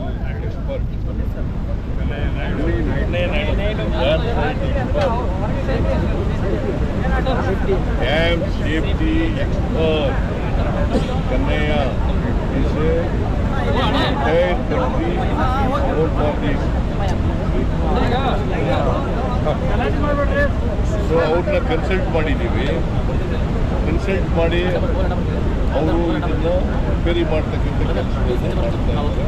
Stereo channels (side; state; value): both; identical; correlation 1.00